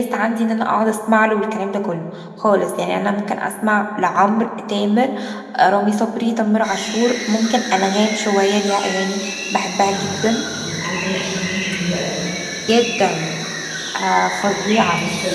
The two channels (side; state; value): both; identical; correlation 1.00